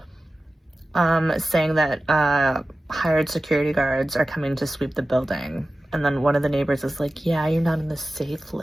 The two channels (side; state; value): both; normal; correlation 0.95